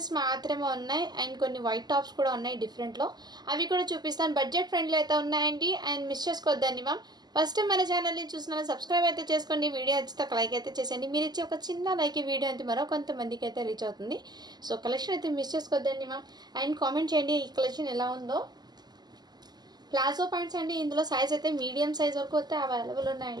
మాత్రమే ఉన్నాయి అండ్ కొన్ని వైట్ టాప్స్ కూడా ఉన్నాయి డిఫరెంట్లో. అవి కూడా చూపిస్తాను. బడ్జెట్ ఫ్రెండ్లీ అయితే ఉన్నాయండి అండ్ మిస్ చేసుకోవద్దండి మ్యామ్. ఫస్ట్ టైం మన ఛానల్ని చూస్తున్నాను, సబ్స్క్రైబ్ అయితే చేసుకోండి. వీడియో నచ్చితే ఒక లైక్ అయితే చేసేయండి. మీరు ఇచ్చే ఒక చిన్న లైక్ ఈ వీడియో అయితే మరో కొంతమందికి అయితే రీచ్ అవుతుంది. సో కలెక్షన్ అయితే మిస్ చేసుకోవద్దండి మ్యామ్. అండ్ కామెంట్ చేయండి ఈ కలెక్షన్ ఎలా ఉందో. ప్లాజో ప్యాంట్స్ అండి. ఇందులో సైజ్ అయితే మీడియం సైజ్ వరకు అయితే అవైలబుల్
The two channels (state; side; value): late; left; 0.20 ms